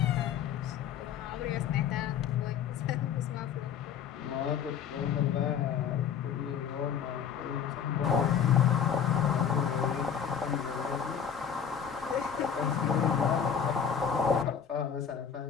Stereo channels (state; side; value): quieter; right; 7.8 dB